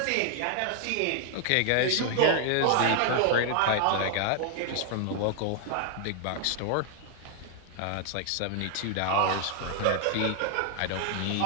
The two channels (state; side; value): different; both; correlation 0.00